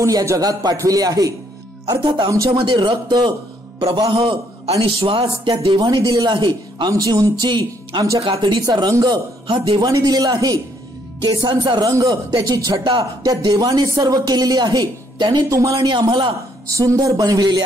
या जगात पाठविले आहे. अर्थात आमच्यामध्ये रक्त प्रवाह आणि श्वास त्या देवाने दिलेला आहे. आमची उंची, आमच्या कातडीचा रंग हा देवाने दिलेला आहे. केसांचा रंग, त्याची छटा त्या देवाने सर्व केलेली आहे. त्याने तुम्हाला आणि आम्हाला सुंदर बनविलेले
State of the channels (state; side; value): normal; both; correlation 0.69